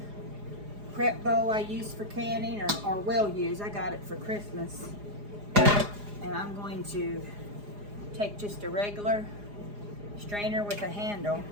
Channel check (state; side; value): late; left; 4.9 ms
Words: prep bowl I use for canning, or will use. I got it for Christmas. And I'm going to take just a regular strainer with a handle